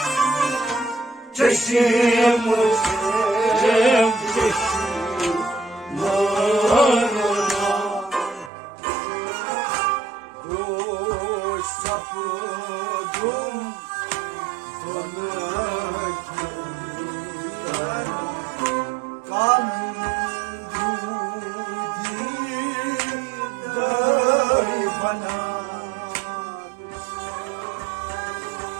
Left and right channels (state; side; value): drops out; left; at 8.5 s